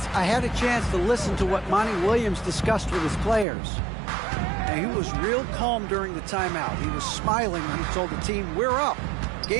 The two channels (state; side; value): drops out; left; at 3.5 s